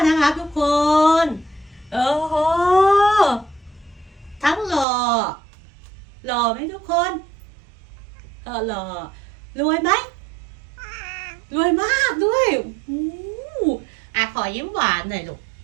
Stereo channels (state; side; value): drops out; left; at 4.9 s